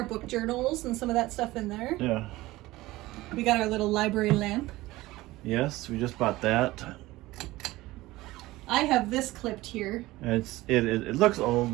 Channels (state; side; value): quieter; left; 18.5 dB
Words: book journals and some of that stuff in there. yeah. We got our little library lamp. Yes, we just bought that. I have this clipped here. And it looks old,